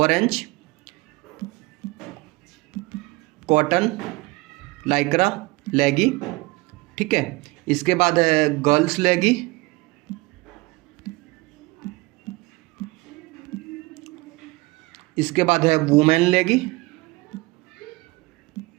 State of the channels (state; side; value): quieter; left; 22.9 dB